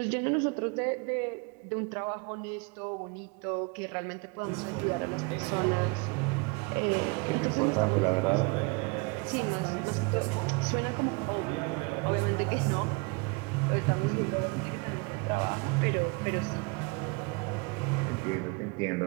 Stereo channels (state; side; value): quieter; left; 29.7 dB